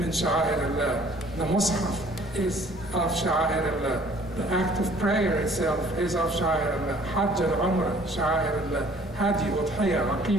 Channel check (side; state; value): both; normal; correlation 0.56